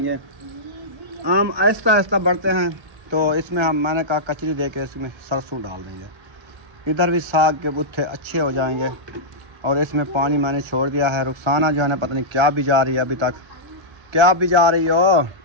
आम आहिस्ता आहिस्ता बढ़ते हैं तो इसमें मैंने कहा कचरी दे के इसमें सरसों डाल देंगे। इधर भी साग के बुत्थे अच्छे हो जाएंगे। और इसमें पानी मैंने छोड़ दिया है। रुखसाना जो है ना पता नहीं क्या बिजा रही है अभी तक। क्या बिजा रही हो?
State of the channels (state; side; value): late; left; 1.3 ms